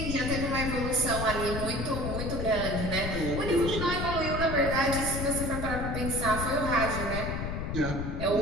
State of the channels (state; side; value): noise; left; rumble, 3 dB below the sound